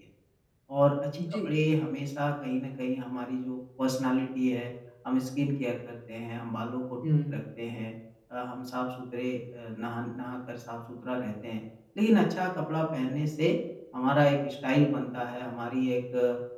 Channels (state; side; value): identical; both; correlation 1.00